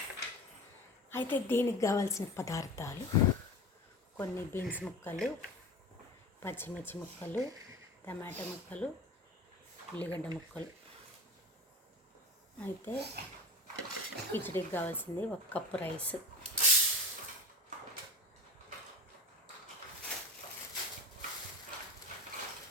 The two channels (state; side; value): normal; both; correlation 0.30